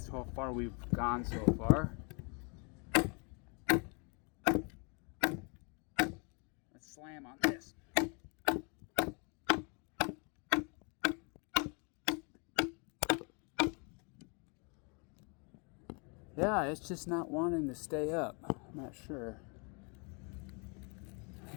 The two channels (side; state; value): right; quieter; 34.0 dB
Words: how far we've gone so far. Let's slam on this. Yeah, it's just not wanting to stay up. I'm not sure.